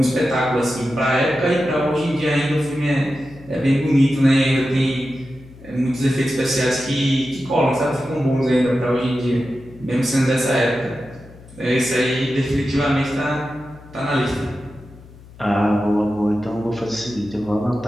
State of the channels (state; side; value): noise; left; hum, 21 dB below the sound